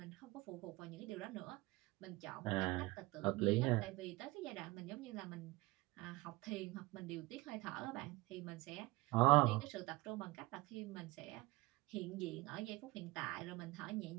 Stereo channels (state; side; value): quieter; left; 20.9 dB